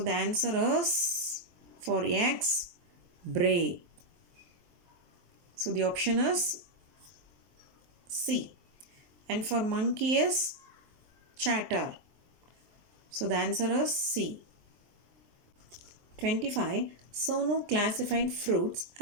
the answer is for X, bray. So the option is C. And for monkey is chatter. So the answer is C. 25. Sonu classified fruits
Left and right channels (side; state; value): left; late; 23 ms